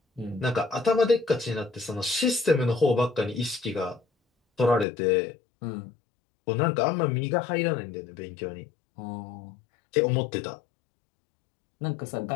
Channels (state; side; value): drops out; right; at 4.9 s